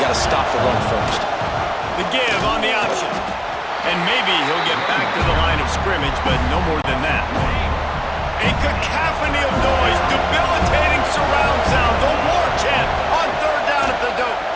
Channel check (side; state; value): both; identical; correlation 1.00